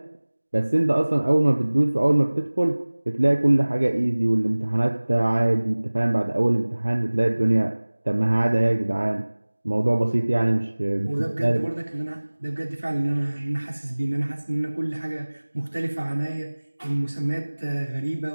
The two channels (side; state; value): both; inverted; correlation -1.00